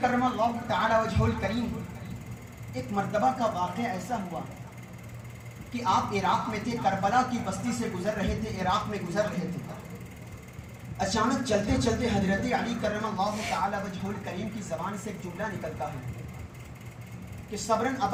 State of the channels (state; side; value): identical; both; correlation 1.00